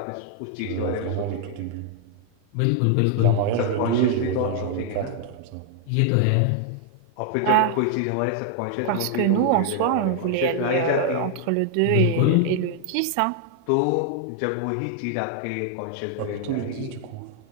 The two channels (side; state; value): both; different; correlation 0.00